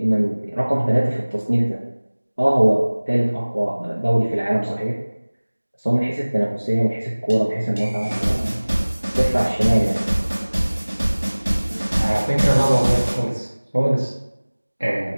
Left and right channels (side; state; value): both; inverted; correlation -1.00